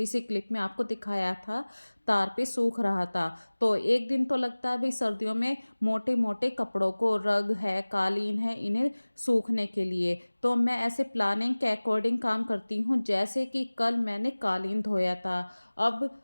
सी क्लिप में आपको दिखाया था, तार पे सूख रहा था। तो एक दिन तो लगता है भाई सर्दियों में मोटे मोटे कपड़ों को, रग है, कालीन है, इन्हें सूखने के लिए। तो मैं ऐसे प्लानिंग के अकॉर्डिंग काम करती हूँ। जैसे कि कल मैंने कालीन धोया था, अब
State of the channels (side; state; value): both; inverted; correlation -1.00